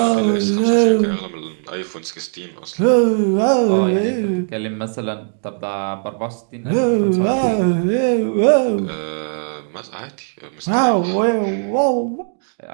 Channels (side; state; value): left; silent; digital silence